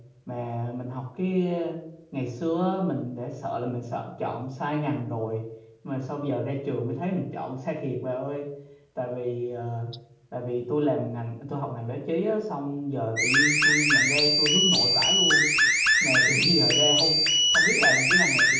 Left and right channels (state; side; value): identical; both; correlation 1.00